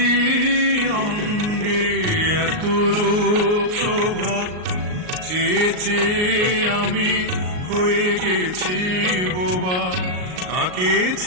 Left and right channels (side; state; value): left; late; 38 ms